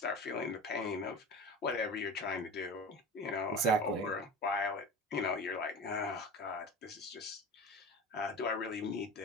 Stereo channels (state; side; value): normal; both; correlation 0.32